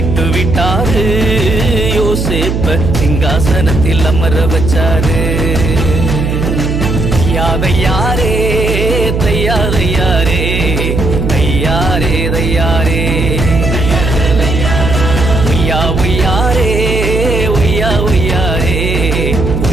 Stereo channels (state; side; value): noise; right; hum, 1 dB below the sound